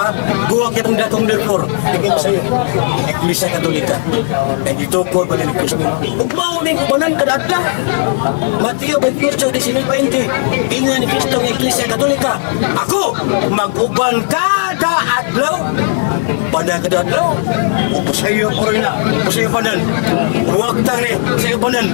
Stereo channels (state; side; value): silent; right; digital silence